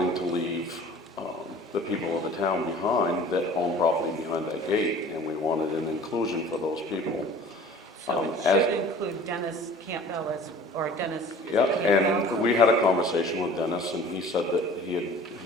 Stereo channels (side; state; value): both; normal; correlation 0.46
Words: to leave the people of the town behind that own property behind that gate, and we wanted an inclusion for those people. So it should include Dennis Campbell or Dennis. Yeah, and we had a conversation with Dennis, and he said that he